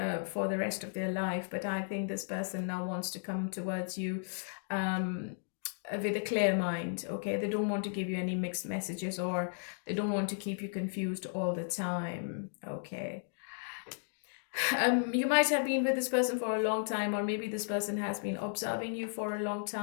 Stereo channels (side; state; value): right; silent; digital silence